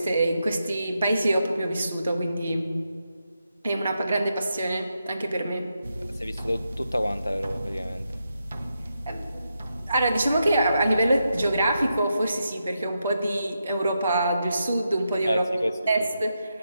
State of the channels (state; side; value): inverted; both; correlation -0.85